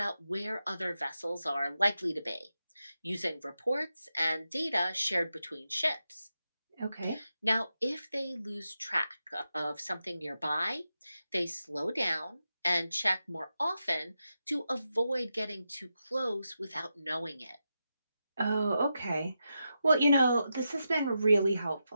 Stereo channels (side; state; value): both; inverted; correlation -0.88